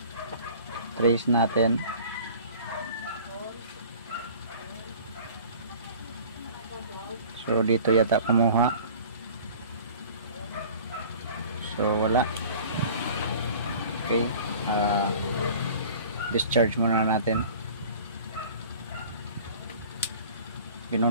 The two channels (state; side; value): inverted; both; correlation -0.45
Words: Trace natin. So dito yata kumuha. So wala. Okay, discharge muna natin.